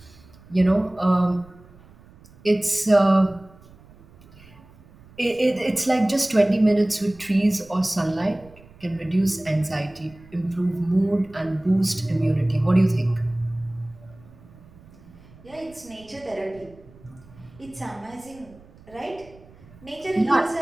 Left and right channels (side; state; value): right; noise; rumble, 24 dB below the sound